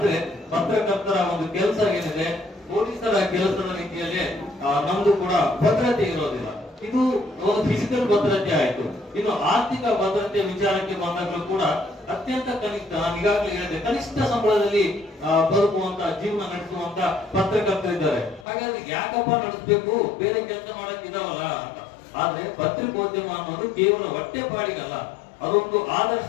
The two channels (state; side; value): drops out; right; at 18.4 s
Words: ಪತ್ರಕರ್ತರ ಒಂದು ಕೆಲಸ ಏನಿದೆ, ಪೊಲೀಸರ ಕೆಲಸದ ರೀತಿಯಲ್ಲಿ ನಮ್ದು ಕೂಡ ಭದ್ರತೆ ಇರೋದಿಲ್ಲ. ಇದು ಒಂದು ಫಿಸಿಕಲ್ ಭದ್ರತೆ ಆಯ್ತು. ಇನ್ನು ಆರ್ಥಿಕ ಭದ್ರತೆ ವಿಚಾರಕ್ಕೆ ಬಂದಾಗಲೂ ಕೂಡ ಅತ್ಯಂತ ಕನಿಷ್ಠ, ನಾನು ಈಗಾಗಲೇ ಹೇಳಿದೆ, ಕನಿಷ್ಠ ಸಂಬಳದಲ್ಲಿ ಬದುಕುವಂತ ಜೀವನ ನಡೆಸುವಂತ ಪತ್ರಕರ್ತರಿದ್ದಾರೆ. ಹಾಗಾಗಿ ಯಾಕಪ್ಪ ನಡೆಸಬೇಕು, ಬೇರೆ ಕೆಲಸ ಮಾಡಕ್ ಇದಾವಲ್ಲ ಅಂತ. ಆದ್ರೆ ಪತ್ರಿಕೋದ್ಯಮ ಅನ್ನೋದು ಕೇವಲ ಹೊಟ್ಟೆ ಪಾಡಿಗಲ್ಲ, ಅದೊಂದು